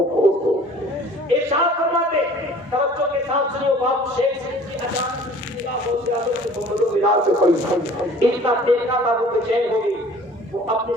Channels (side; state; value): both; normal; correlation 0.50